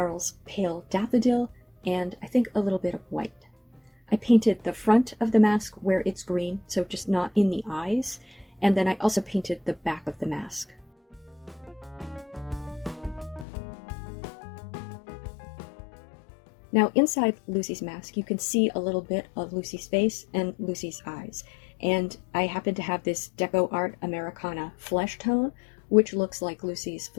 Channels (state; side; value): drops out; right; at 13.5 s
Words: pale Daffodil and I think a little bit of white. I painted the front of the mask where it's green, so just not in the eyes, and then I also painted the back of the mask. Now inside Lucy's mask, you can see a little bit of Lucy's face and Lucy's eyes. And I happen to have this Deco Art Americana flesh tone, which looks like Lucy's